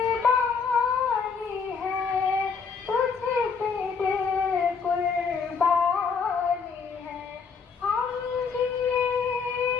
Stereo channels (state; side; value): quieter; right; 5.6 dB